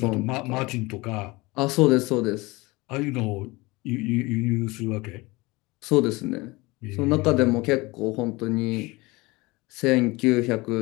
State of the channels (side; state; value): right; quieter; 22.9 dB